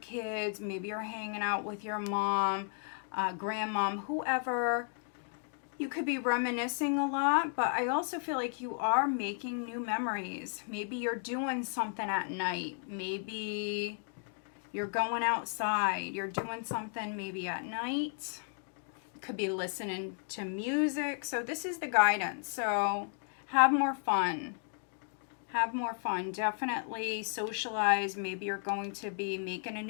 Maybe you're hanging out with your mom, grandmom, whoever. You could be reminiscing a lot, but I also feel like you are making new memories. Maybe you're doing something at night. Maybe you're going outside. You're doing something maybe at night. Could be listening to music. So this is the guidance. So have more fun. Have more fun. Definitely socialize. Maybe you're going to be making a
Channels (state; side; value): silent; right; 55 dB below the other